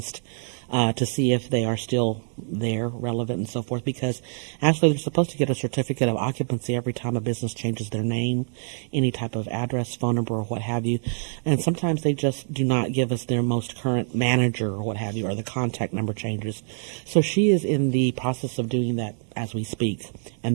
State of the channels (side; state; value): left; silent; digital silence